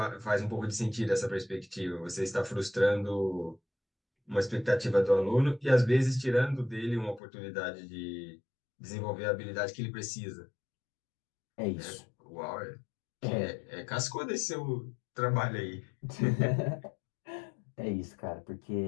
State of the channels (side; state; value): right; drops out; at 7.2 s